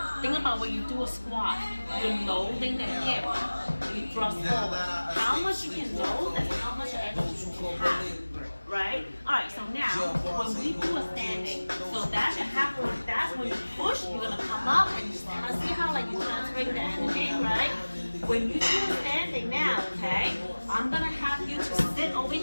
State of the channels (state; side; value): inverted; both; correlation -1.00